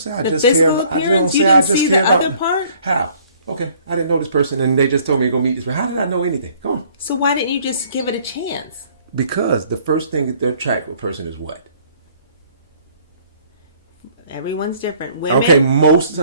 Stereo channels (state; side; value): inverted; both; correlation -0.58